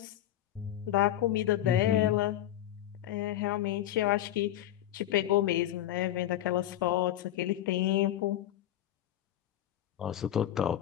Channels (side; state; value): right; quieter; 12.7 dB